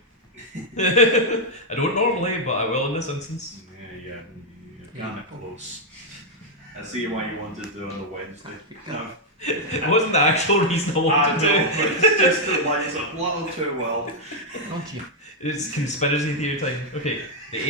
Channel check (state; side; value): normal; both; correlation -0.03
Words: I don't normally, but I will in this instance. Yeah, you're kind of close. I see why you wanted to do it on the Wednesday. It wasn't the actual reason I wanted to do it. But it's just that lines up a little too well. Don't you? It's conspiracy theory time. Okay, the